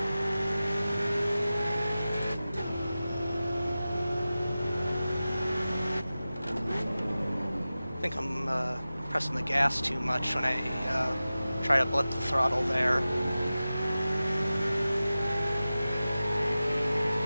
I think I'm pressing the gas too much when I try to blip the throttle there.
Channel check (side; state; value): both; inverted; correlation -0.95